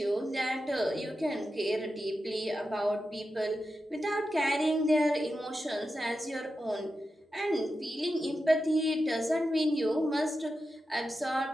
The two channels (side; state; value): both; normal; correlation 0.90